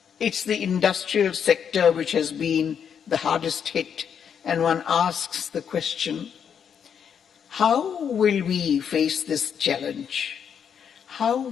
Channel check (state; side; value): quieter; right; 7.7 dB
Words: it's the industrial sector which has been the hardest hit, and one asks the question, how will we face this challenge? How